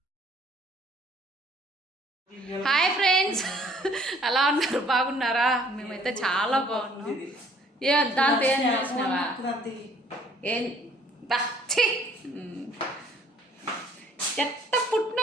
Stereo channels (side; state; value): both; normal; correlation 0.59